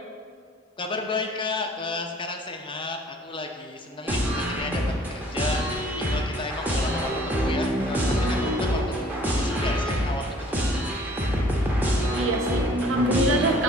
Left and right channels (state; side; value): normal; both; correlation 0.54